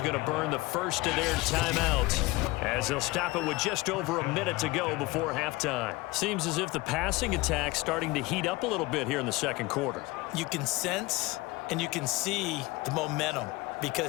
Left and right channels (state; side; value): quieter; right; 21.4 dB